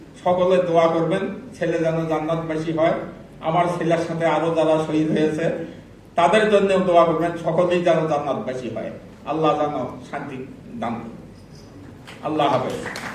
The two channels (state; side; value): identical; both; correlation 1.00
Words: সকলে দোয়া করবেন ছেলে যেন জান্নাতবাসী হয়। আমার ছেলের সাথে আরো যারা শহীদ হয়েছে তাদের জন্য দোয়া করবেন, সকলেই যেন জান্নাতবাসী হয়। আল্লাহ যেন শান্তি দান। আল্লাহ হাফেজ।